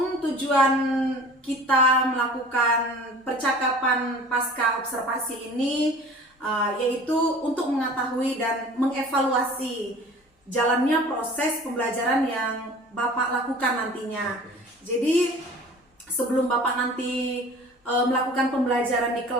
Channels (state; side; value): normal; both; correlation 0.44